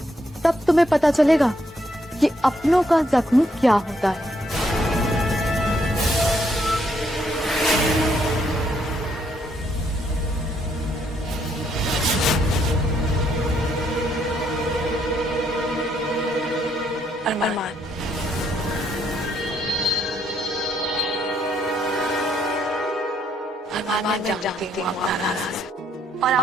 तब तुम्हें पता चलेगा कि अपनों का जख्म क्या होता है। अरमान, मैं जानती हूँ आप नाराज हैं। और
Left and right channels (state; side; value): normal; both; correlation 0.73